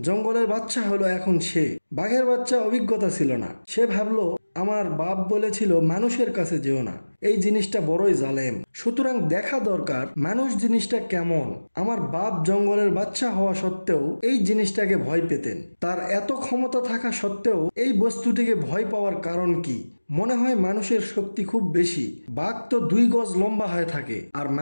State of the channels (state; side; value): inverted; both; correlation -1.00